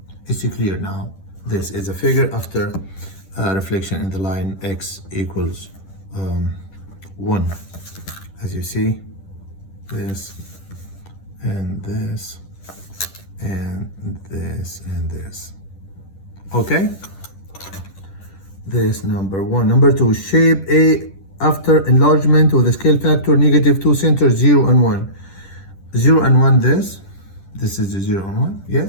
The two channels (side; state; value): right; late; 10 ms